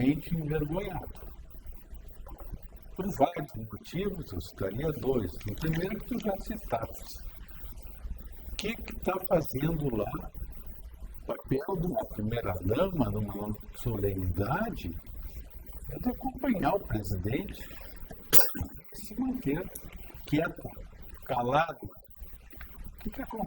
envergonhado. Por vários motivos, eu citaria dois. O primeiro que tu já citaste. O que está fazendo lá o papel de uma primeira-dama numa solenidade é de acompanhar o presidente e se manter quieta, calada. O que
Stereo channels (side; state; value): both; identical; correlation 1.00